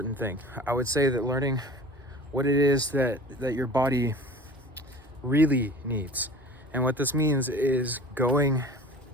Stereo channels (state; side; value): normal; both; correlation 0.41